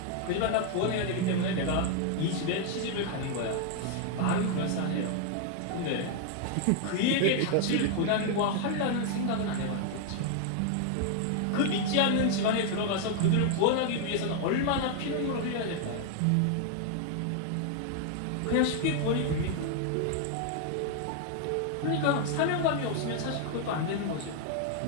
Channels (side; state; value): both; different; correlation 0.00